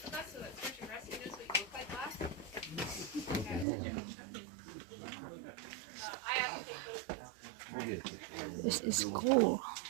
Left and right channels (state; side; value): drops out; left; at 3.7 s